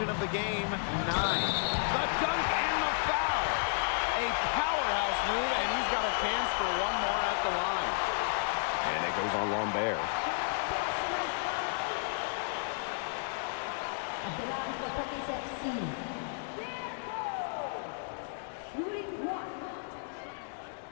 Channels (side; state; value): right; silent; digital silence